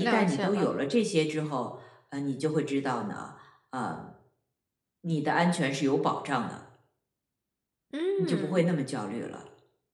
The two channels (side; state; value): both; identical; correlation 1.00